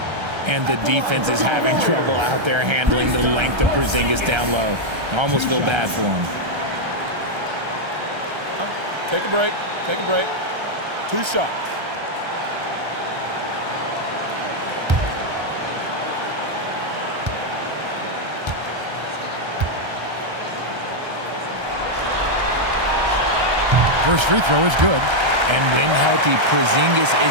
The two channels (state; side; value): late; left; 1.3 ms